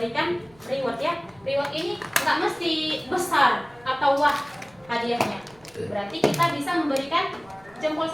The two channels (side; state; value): right; noise; rumble, 29 dB below the sound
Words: reward ya. Reward ini nggak mesti besar atau wah hadiahnya. Berarti kita bisa memberikan jempol